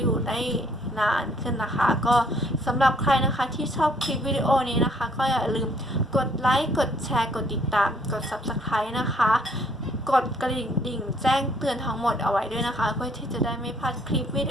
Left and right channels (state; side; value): normal; both; correlation 0.63